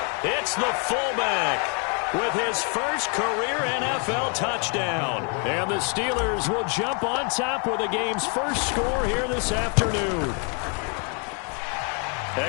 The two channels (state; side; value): quieter; right; 38.2 dB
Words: It's the fullback with his first career NFL touchdown. And the Steelers will jump on top with the game's first score here this afternoon.